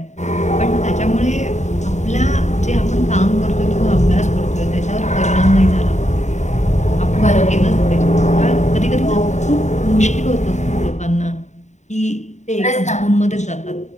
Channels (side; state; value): right; late; 0.34 ms